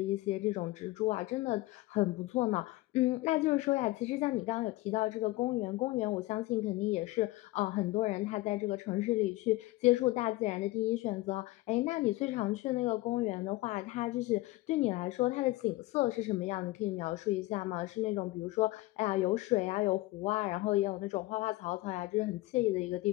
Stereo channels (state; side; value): quieter; right; 19.4 dB